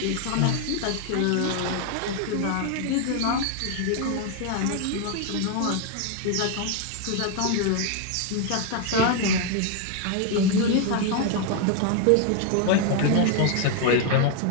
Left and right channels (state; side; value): different; both; correlation 0.00